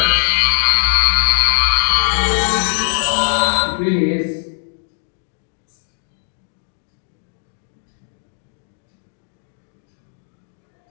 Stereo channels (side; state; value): right; silent; 66 dB below the other